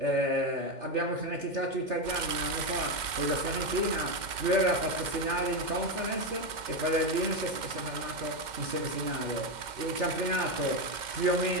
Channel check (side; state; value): left; late; 2.1 ms